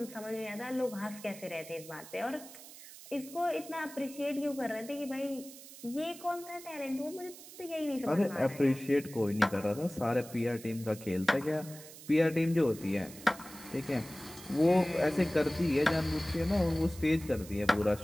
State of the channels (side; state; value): right; noise; hiss, 16 dB below the sound